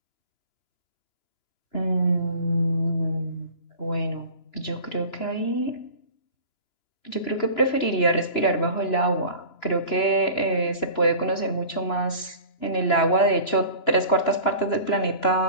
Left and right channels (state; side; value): late; right; 2.9 ms